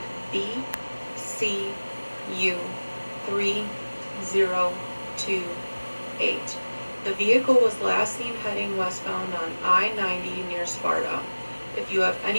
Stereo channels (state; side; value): inverted; both; correlation -1.00